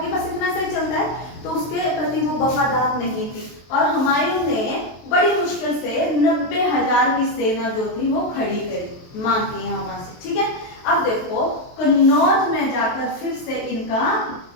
बस इतना सा ही चलता है, तो उसके प्रति वो वफादार नहीं थी। और हुमायूं ने बड़ी मुश्किल से 90,000 की सेना जो थी वो खड़ी करी, मांग की यहाँ वहां से। ठीक है, अब देखो कन्नौज में जाकर फिर से इनका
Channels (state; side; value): late; right; 23 ms